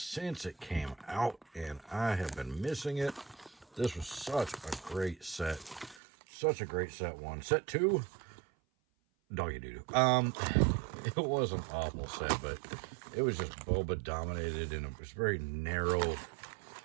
it came out, and I have been missing it. This was such a great set, such a great set one. Set two, doggy doo doo. It was an awful set, but it was just Boba dominated, and it was very narrow,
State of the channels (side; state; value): left; drops out; at 6.0 s